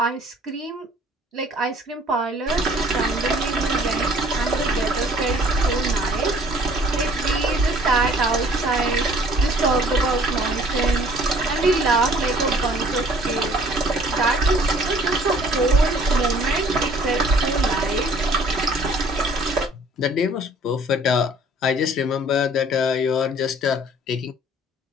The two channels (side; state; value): both; normal; correlation 0.55